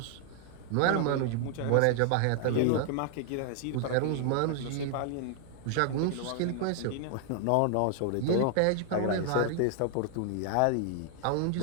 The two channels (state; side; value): different; both; correlation 0.00